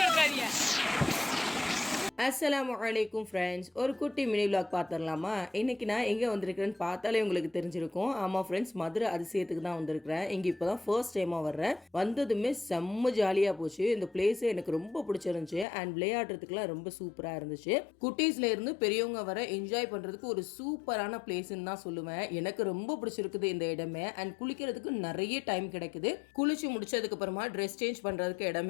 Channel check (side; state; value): right; drops out; at 15.7 s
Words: அஸ்ஸலாமு அலைக்கும் ஃப்ரெண்ட்ஸ், ஒரு குட்டி மினி விலாக் பார்த்துடலாமா? இன்றைக்கி நான் எங்கே வந்திருக்கிறேன்னு பார்த்தாலே உங்களுக்கு தெரிஞ்சிருக்கும். ஆமாம் ஃப்ரெண்ட்ஸ், மதுரை அதிசயத்துக்கு தான் வந்திருக்கிறேன். இங்கே இப்போ தான் ஃபர்ஸ்ட் டைமாக வர்றேன். வந்ததுமே செம்ம ஜாலியாக போச்சு. இந்த பிளேஸே எனக்கு ரொம்ப பிடிச்சிருந்துச்சு. அண்ட் விளையாடுறதுக்குலாம் ரொம்ப சூப்பராக இருந்துச்சு. குட்டீஸ்ல இருந்து பெரியவங்க வர என்ஜாய் பண்ணுறதுக்கு ஒரு சூப்பரான பிளேஸ்ன்னு தான் சொல்லுவேன். எனக்கு ரொம்ப பிடிச்சிருக்குது இந்த இடமே. அண்ட் குளிக்கிறதுக்கு நிறைய டைம் கிடைக்குது. குளிச்சு முடிச்சதுக்கு அப்புறமா ட்ரெஸ் சேஞ்ச் பண்ணுறதுக்கு